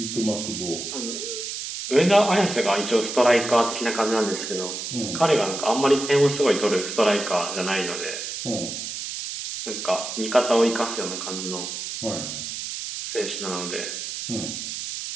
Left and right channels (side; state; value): right; noise; hiss, 6 dB below the sound